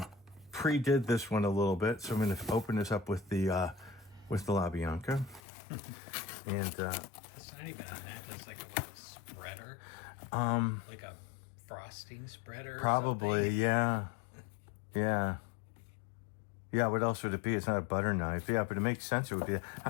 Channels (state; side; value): drops out; right; at 5.4 s